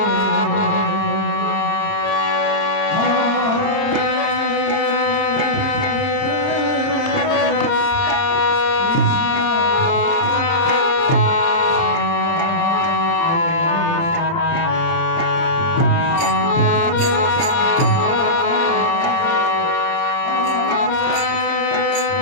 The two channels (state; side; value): late; right; 30 ms